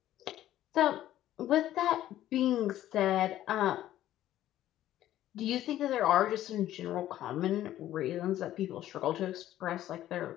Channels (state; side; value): quieter; right; 13.1 dB